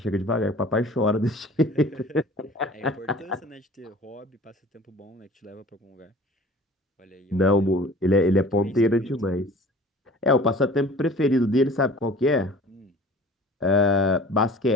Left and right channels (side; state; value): both; normal; correlation 0.46